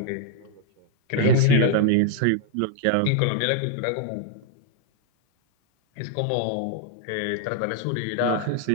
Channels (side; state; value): both; different; correlation 0.00